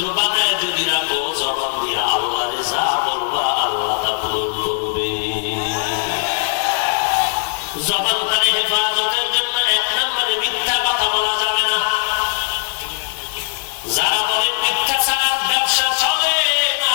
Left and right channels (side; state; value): right; silent; 66 dB below the other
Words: বানায় যদি রাখো, জবান দিয়ে আল্লাহরে যা বলবা আল্লাহ তা পূরণ করবে। জবানটারে হেফাজতের জন্য এক নম্বরে মিথ্যা কথা বলা যাবে না। যারা বলেন মিথ্যা ছাড়া ব্যবসা চলে না,